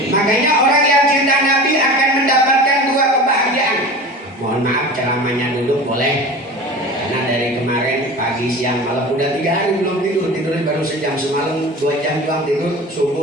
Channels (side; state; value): both; normal; correlation 0.35